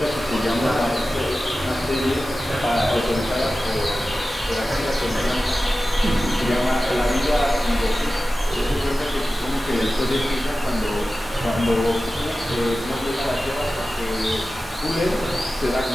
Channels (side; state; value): both; normal; correlation 0.95